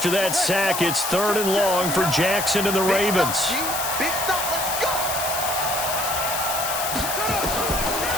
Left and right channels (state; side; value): noise; left; hiss, 3 dB below the sound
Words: that sack, it's 3rd and long for Jackson and the Ravens. Big stop, let's go.